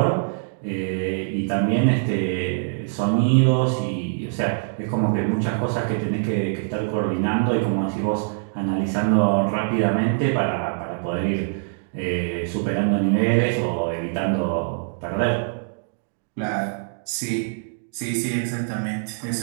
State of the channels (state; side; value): silent; left; digital silence